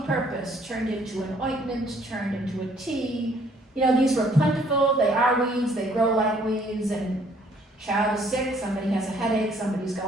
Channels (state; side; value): normal; both; correlation 0.62